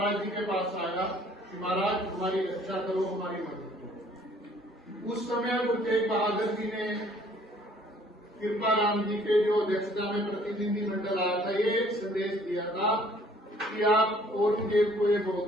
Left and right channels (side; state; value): both; normal; correlation 0.58